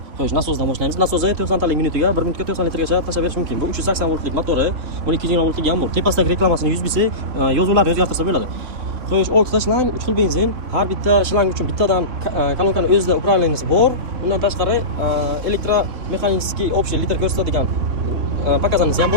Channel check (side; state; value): left; late; 3.5 ms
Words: xo'sh, nasosdan boshlaymiz. Nasosi 90 talik minutiga 1 minutga 90 litrgacha tashlab berish mumkin. Bu 380 voltlik motori, buni 220 voltlik ham bor. Tepasidagi reklamasini 100 bilsa, yozuvlarni o'zgartirsa bo'ladi. Xo'sh, 6 ta shlang, 3 xil benzin. Har bitta shlang uchun bittadan kolonkani o'zida upravleniyaси bor. Undan tashqari elektromexanический общий litr ko'rsatadigan pakazanisi ham